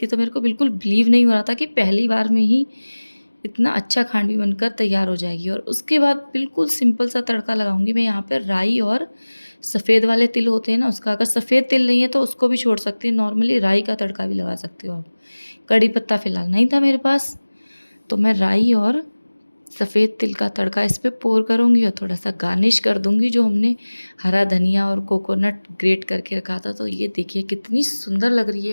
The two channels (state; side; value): inverted; both; correlation -1.00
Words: तो मेरे को बिल्कुल बिलीव नहीं हो रहा था कि पहली बार में ही इतना अच्छा खांडवी बनकर तैयार हो जाएगी। और उसके बाद बिल्कुल सिंपल सा तड़का लगाऊंगी मैं यहाँ पर। राई और सफ़ेद वाले तिल होते हैं ना उसका, अगर सफ़ेद तिल नहीं है तो उसको भी छोड़ सकते हैं, नॉर्मली राई का तड़का भी लगा सकते हो आप। कड़ी पत्ता फ़िलहाल नहीं था मेरे पास, तो मैं राई और सफ़ेद तिल का तड़का इस पर पोर करूँगी और थोड़ा सा गार्निश कर दूँगी जो हमने हरा धनिया और कोकोनट ग्रेट करके रखा था। तो ये देखिए कितनी सुंदर लग रही